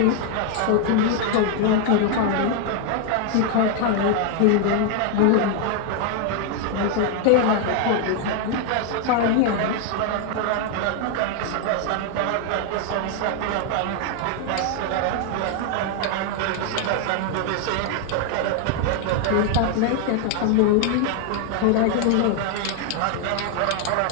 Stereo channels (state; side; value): different; both; correlation 0.00